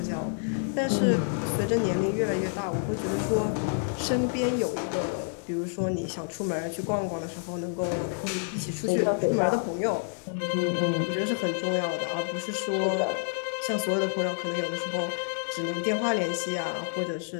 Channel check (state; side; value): silent; right; 59 dB below the other